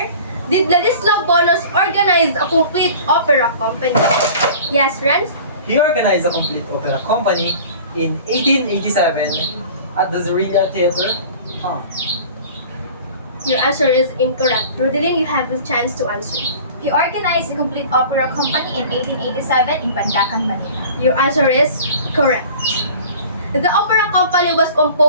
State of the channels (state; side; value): inverted; both; correlation -0.43